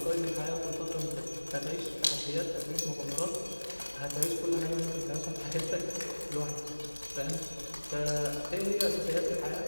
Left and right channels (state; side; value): inverted; both; correlation -1.00